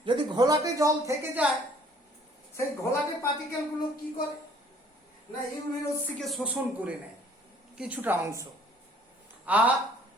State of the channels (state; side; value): normal; both; correlation 0.57